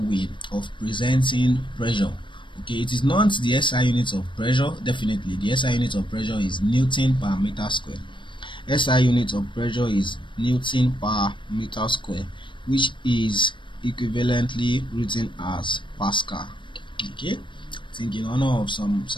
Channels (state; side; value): late; right; 0.24 ms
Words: of presenting pressure. Okay, it is not the SI unit of pressure. Definitely the SI unit of pressure is Newton per meter square. SI unit of pressure is Newton per meter square, which is equivalently written as Pascal. Okay, I think in honor of some